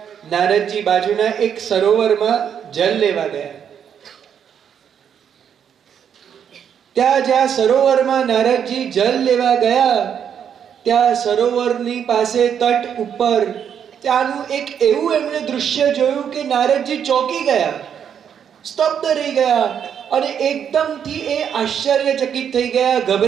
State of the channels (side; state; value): left; quieter; 8.3 dB